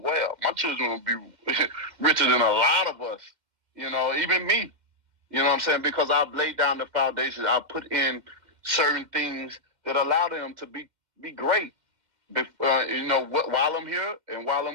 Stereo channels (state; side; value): late; left; 2.1 ms